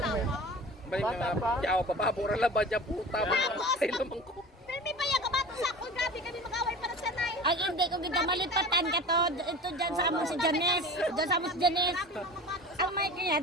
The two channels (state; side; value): normal; both; correlation 0.37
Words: Balik Bata na pa. yaw papabura la ba dyan puta. Ay naman ko. Filmi pa yan, kabato sa ako. Grabe kami mag-away para sa nay. Ay, hindi ko kita malipatan ka to. Ito dyan sa amo si Janice. Dyan sa amo si Janice. Ang may kanya,